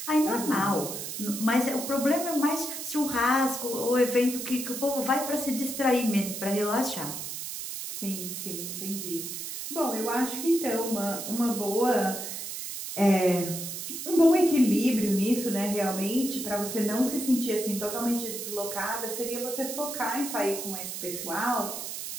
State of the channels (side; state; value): right; noise; hiss, 6 dB below the sound